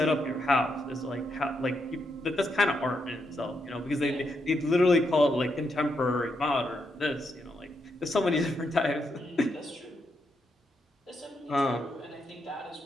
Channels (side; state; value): both; normal; correlation 0.81